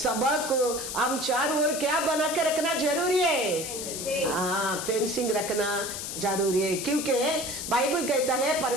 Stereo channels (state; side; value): noise; left; hiss, 6 dB below the sound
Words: को हम चारों ओर क्या बना के रखना जरूरी है? फेंसिंग रखना जरूरी है। क्योंकि बाइबल कहता है